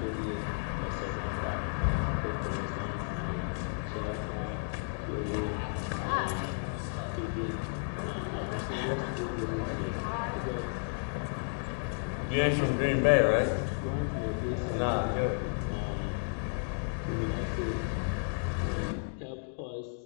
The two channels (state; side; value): silent; right; digital silence